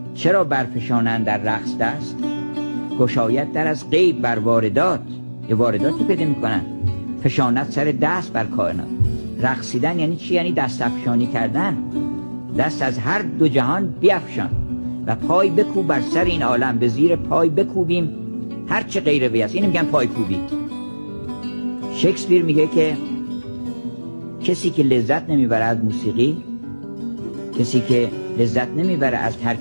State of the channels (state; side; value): inverted; both; correlation -1.00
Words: چرا برفشانند در رقص دست؟ گشاید در از غیب بر واردات، یه وارداتی پیدا میکنن، فشانت سر دست بر کائنات. رقصیدن یعنی چی؟ یعنی دست افشانی کردن، دست از هر دو جهان بیفشان و پای بکوب بر سر این عالم، به زیر پای بکوبیم هر چه غیر وی است. اینو میگن پای کوبی. شکسپیر میگه که کسی که لذت نمیبره از موسیقی، کسی که لذت نمیبره از